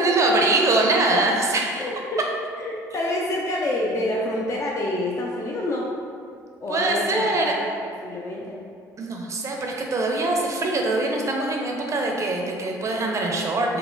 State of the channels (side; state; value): both; normal; correlation 0.44